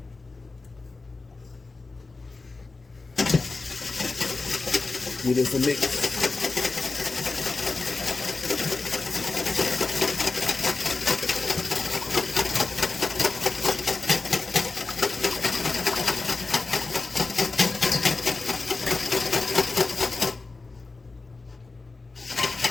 Give this a mix.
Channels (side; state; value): right; quieter; 3.8 dB